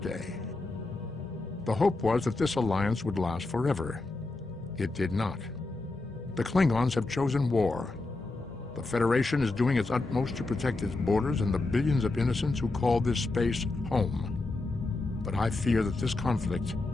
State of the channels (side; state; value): right; quieter; 3.2 dB